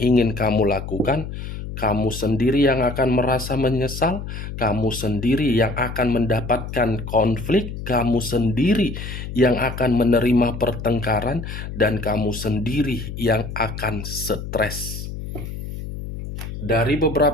kamu lakukan, kamu sendiri yang akan merasa menyesal, kamu sendiri yang akan mendapatkan konflik, kamu sendiri yang akan menerima pertengkaran, dan kamu sendiri yang akan stres. Dari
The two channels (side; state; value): left; noise; hum, 8 dB below the sound